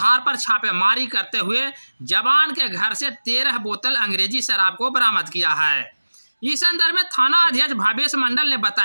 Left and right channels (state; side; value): inverted; both; correlation -1.00